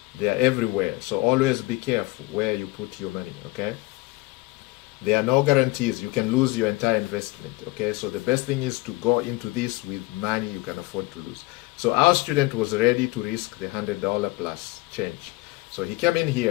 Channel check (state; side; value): quieter; right; 21.7 dB